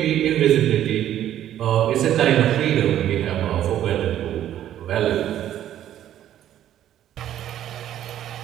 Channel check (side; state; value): left; quieter; 11.6 dB